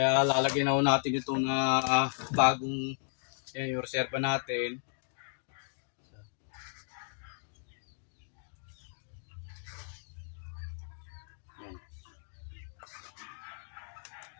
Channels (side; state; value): right; silent; digital silence